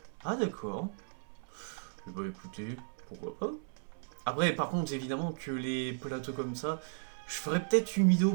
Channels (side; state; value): left; silent; 54 dB below the other